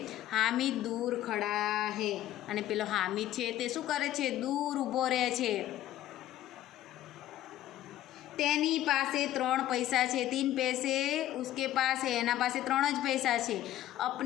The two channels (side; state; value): right; quieter; 13.4 dB